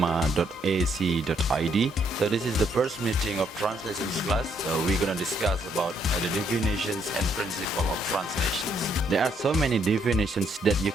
So this is the first meeting of translations class. So we're gonna discuss about the definitions and principle of translations. There are so many definitions that you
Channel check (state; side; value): normal; both; correlation 0.72